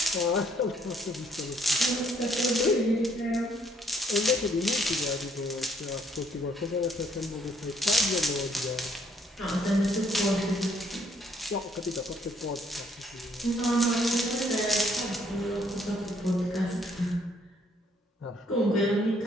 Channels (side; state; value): both; normal; correlation 0.67